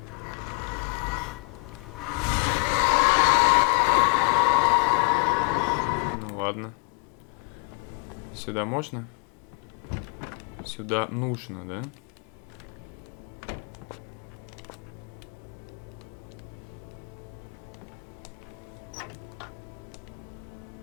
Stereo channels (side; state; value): right; quieter; 37.7 dB